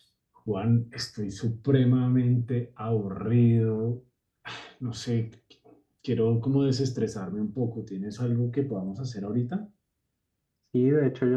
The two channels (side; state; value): both; identical; correlation 1.00